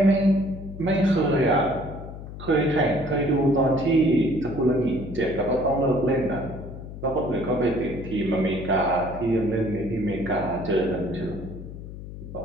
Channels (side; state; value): left; noise; hum, 12 dB below the sound